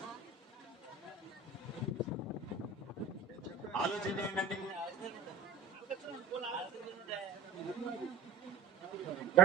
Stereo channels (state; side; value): quieter; left; 4.5 dB